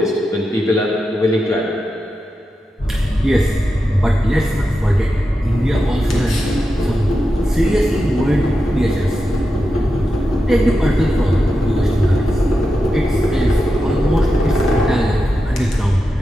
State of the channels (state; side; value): normal; both; correlation 0.89